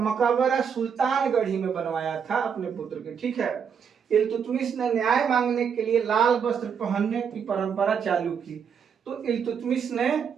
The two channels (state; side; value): quieter; left; 7.0 dB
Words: सुल्तानगढ़ी में बनवाया था अपने पुत्र के, ठीक है। इल्तुतमिश ने न्याय मांगने के लिए लाल वस्त्र पहनने की परंपरा चालू की। तो इल्तुतमिश ने